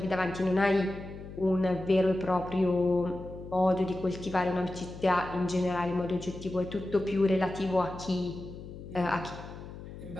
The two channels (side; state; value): left; noise; hum, 13 dB below the sound